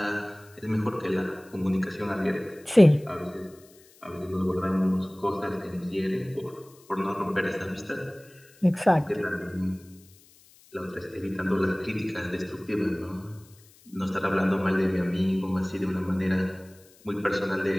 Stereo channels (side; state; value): left; noise; hiss, 27 dB below the sound